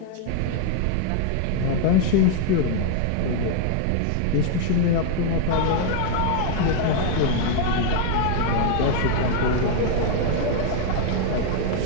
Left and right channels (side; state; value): both; different; correlation 0.00